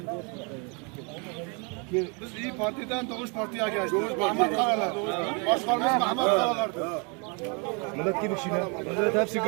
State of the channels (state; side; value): quieter; left; 33.8 dB